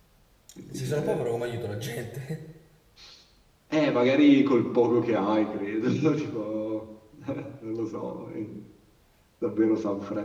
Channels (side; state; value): both; identical; correlation 1.00